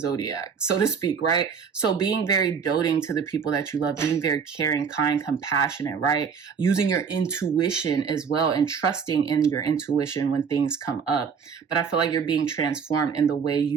so to speak, right? So being very doting to the people that you love, being very caring, kind, compassionate, right? Using your intuition as well, and trusting in your intuition when things come up. But I feel like you're being transformed in the way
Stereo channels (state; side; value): quieter; left; 6.3 dB